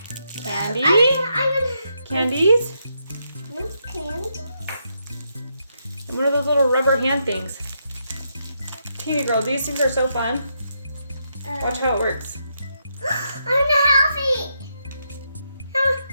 candy. Candies. There's candies. And one of those little rubber hand things. Teeny girl, these things are so fun. Watch how it works. I'm gonna have it. I'm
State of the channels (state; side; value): inverted; both; correlation -0.80